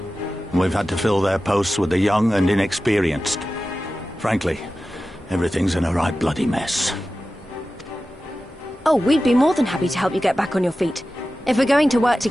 and we've had to fill their posts with the young and inexperienced. Frankly, everything's in a right bloody mess. Oh, we'd be more than happy to help you get back on your feet. If we're going to work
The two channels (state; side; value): normal; both; correlation 0.94